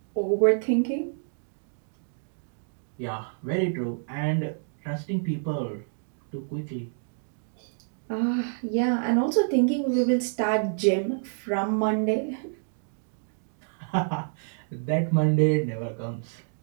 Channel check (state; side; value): silent; left; digital silence